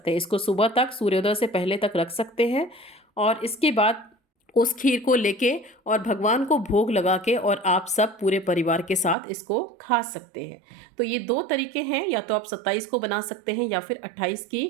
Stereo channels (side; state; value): left; drops out; at 9.2 s